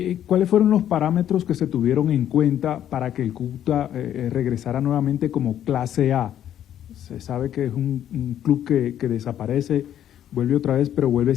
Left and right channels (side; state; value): right; quieter; 10.7 dB